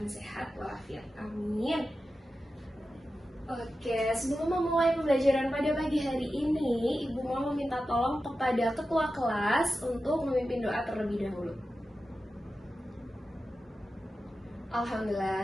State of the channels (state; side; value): normal; both; correlation 0.92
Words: sehat walafiat. Amin. Oke, sebelum memulai pembelajaran pada pagi hari ini, Ibu mau meminta tolong kepada ketua kelas untuk memimpin doa terlebih dahulu.